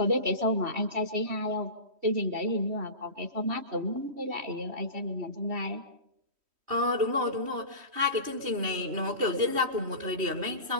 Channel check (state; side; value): late; left; 3.1 ms